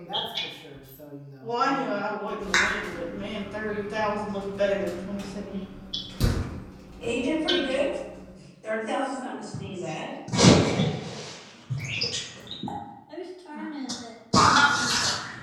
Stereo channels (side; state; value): both; identical; correlation 1.00